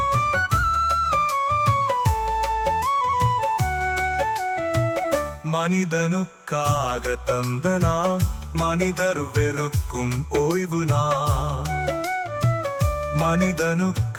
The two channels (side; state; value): both; identical; correlation 1.00